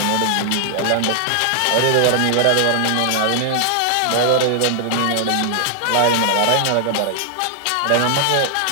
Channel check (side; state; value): both; different; correlation 0.00